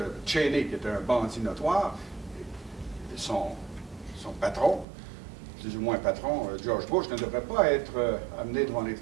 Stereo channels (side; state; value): left; drops out; at 4.9 s